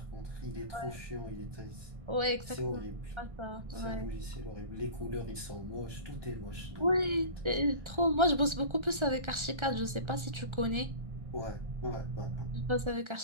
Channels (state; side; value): late; left; 1.3 ms